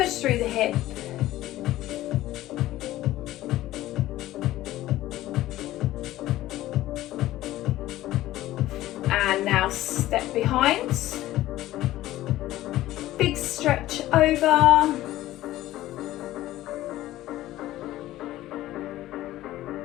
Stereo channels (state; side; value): quieter; right; 15.4 dB